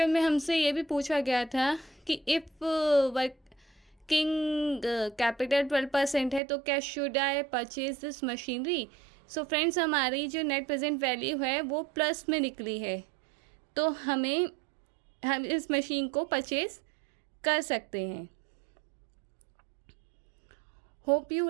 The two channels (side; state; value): left; drops out; at 6.4 s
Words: में हमसे ये भी पूछा गया था कि इफ़ वर्किंग कैपिटल 12% है तो क्या should I purchase this machinery. So friends हमारी जो नेट प्रेजेंट वैल्यू है वो प्लस में निकली है, तो हम इस मशीन को परचेज कर सकते हैं। Hope you